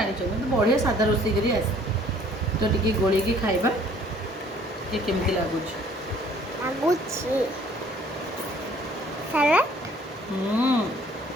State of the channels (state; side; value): normal; both; correlation 0.57